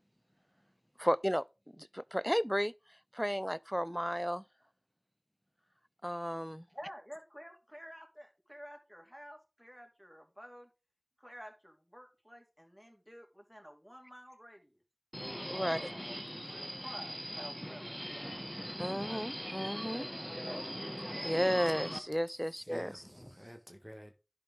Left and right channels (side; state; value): both; identical; correlation 1.00